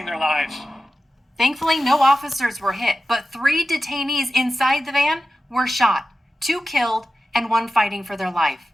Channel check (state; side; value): normal; both; correlation 0.93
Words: their lives. Thankfully, no officers were hit, but 3 detainees inside the van were shot, 2 killed, and 1 fighting for their life.